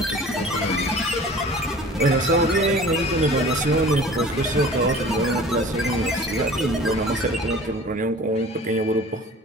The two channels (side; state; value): both; normal; correlation 0.45